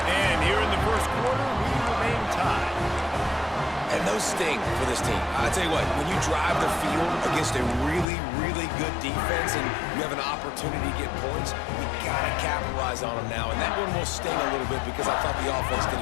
And here in the first quarter, we remain tied. And those sting for this team. I tell you what, when you drive the field against a really, really good defense and you have an opportunity to get points, you got to capitalize on them now. And that one will sting a little bit because I thought the offense did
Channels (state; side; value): drops out; right; at 8.1 s